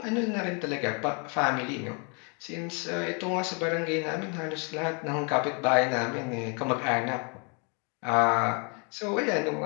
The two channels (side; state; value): right; quieter; 35.6 dB